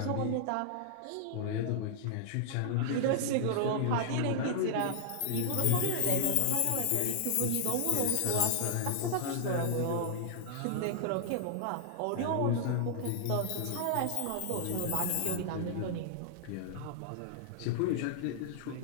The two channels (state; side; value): different; both; correlation -0.01